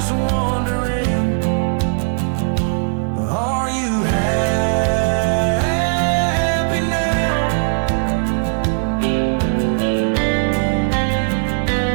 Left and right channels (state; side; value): silent; left; digital silence